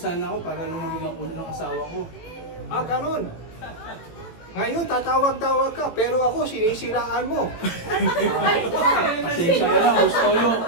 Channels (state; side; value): late; right; 18 ms